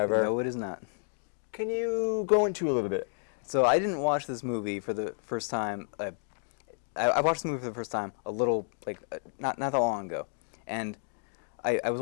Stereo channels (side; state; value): right; silent; 57 dB below the other